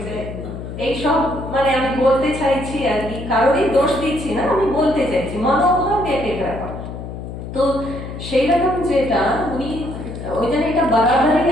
এইসব, মানে আমি বলতে চাইছি আর কি, কারোরই দোষ দিচ্ছি না, আমি বলতে চাইছি মনোভাব এক এক রকম। তো সেই রকম যেটা উনি ওই জন্য এটা বাড়াবাড়ি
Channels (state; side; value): noise; left; hum, 9 dB below the sound